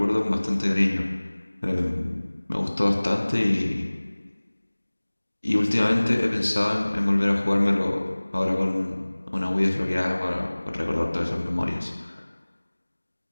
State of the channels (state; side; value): inverted; both; correlation -1.00